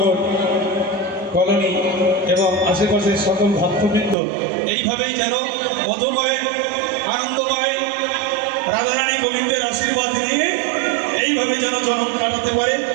কলোনি এবং আশেপাশের সকল ভক্তবৃন্দ এইভাবেই যেন মধুময় আনন্দময় রাধারানী গোবিন্দের আশীর্বাদ নিয়ে এইভাবে যেন জন্ম কাটাতে পারে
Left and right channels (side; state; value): left; drops out; at 4.2 s